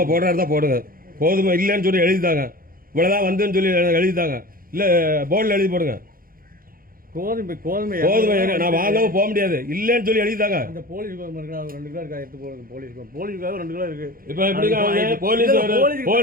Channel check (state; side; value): late; left; 0.42 ms